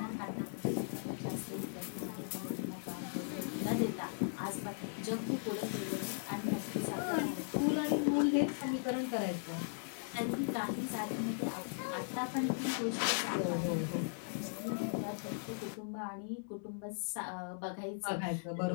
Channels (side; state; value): right; silent; digital silence